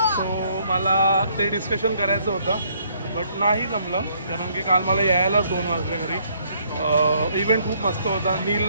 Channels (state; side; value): inverted; both; correlation -0.67